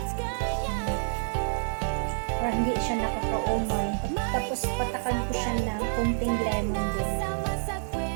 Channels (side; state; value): left; silent; digital silence